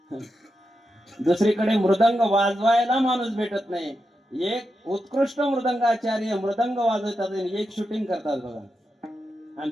दुसरीकडे मृदंग वाजवायला माणूस भेटत नाही, एक उत्कृष्ट मृदंगाचार्य मृदंग वाजवतात आणि एक शूटिंग करतात बघा.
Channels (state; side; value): normal; both; correlation 0.87